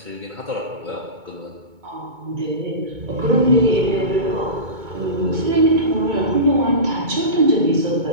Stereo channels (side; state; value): left; late; 2.2 ms